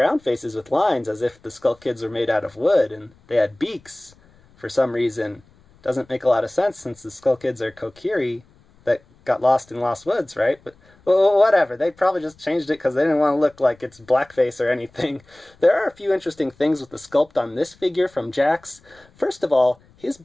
faces with lines as if the Skull Kids were made out of wood, and they had beaks for some reason. Doesn't make a lot of sense since the Skull Kids are Kokiri that got lost in Lost Woods, right? But well, whatever. They probably just changed it because they didn't want to look like it's blackface or anything. There are a few interesting things with the sculpt on this figure from Jakks. First of all, his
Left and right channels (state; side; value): noise; left; rumble, 30 dB below the sound